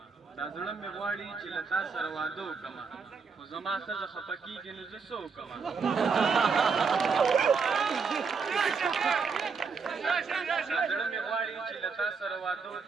دا زړه مې غواړي چې له تا سره واده وکړمه، خو زما ښځه خفه کېږي نو زه څه وکړمه. دا زړه مې غواړي چې له تا سره واده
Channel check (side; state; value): left; quieter; 5.3 dB